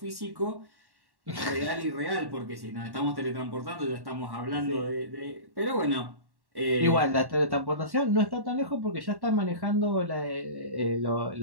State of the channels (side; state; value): left; late; 1.1 ms